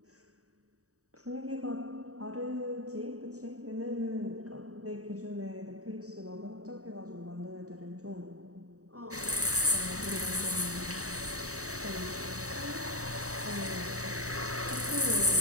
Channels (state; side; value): late; left; 0.66 ms